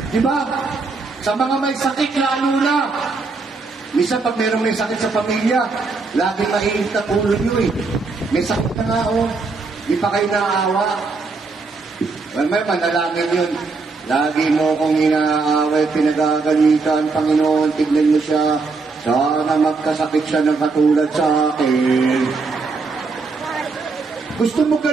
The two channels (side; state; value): left; quieter; 4.1 dB